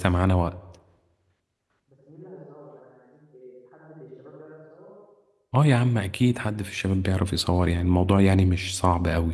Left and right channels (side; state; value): both; identical; correlation 1.00